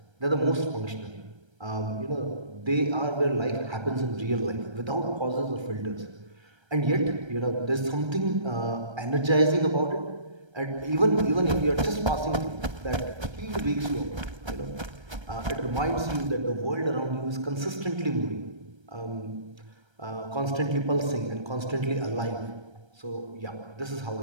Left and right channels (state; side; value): late; left; 1.3 ms